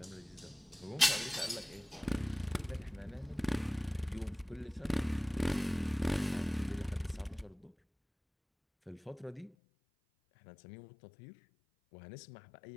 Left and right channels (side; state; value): right; drops out; at 9.6 s